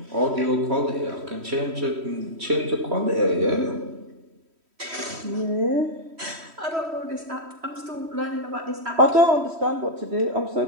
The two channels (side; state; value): left; late; 3.1 ms